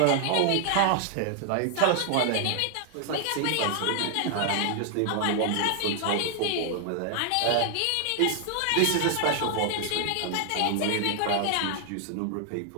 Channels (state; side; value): different; both; correlation 0.00